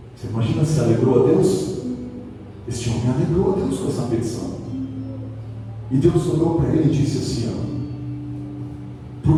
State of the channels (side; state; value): both; identical; correlation 1.00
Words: Você imagina se alegrou a Deus? Este homem alegrou a Deus com essa petição. E Deus olhou para ele e disse assim: